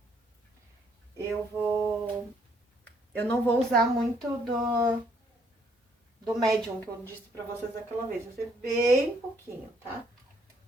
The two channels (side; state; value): both; normal; correlation 0.68